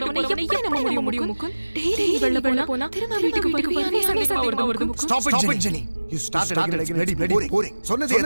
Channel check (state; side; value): inverted; both; correlation -1.00